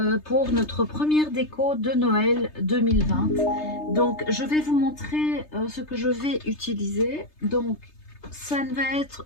pour notre première déco de Noël 2020. Donc je vais vous montrer ce que je vais utiliser. Donc ça ne va être,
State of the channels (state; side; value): late; right; 3.3 ms